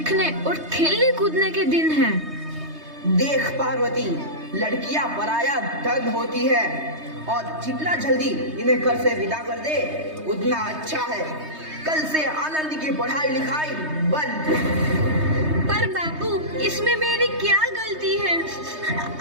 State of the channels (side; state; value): left; late; 3.2 ms